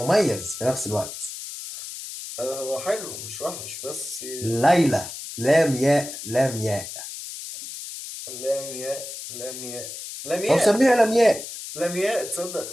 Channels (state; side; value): noise; left; hiss, 10 dB below the sound